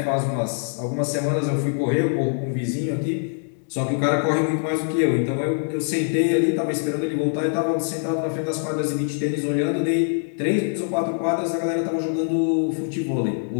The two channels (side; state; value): right; silent; 63 dB below the other